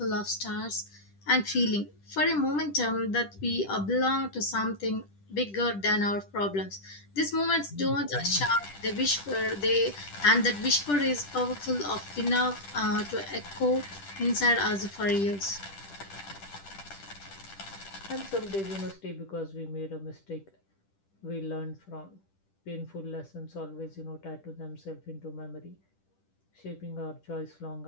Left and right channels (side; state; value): right; late; 10 ms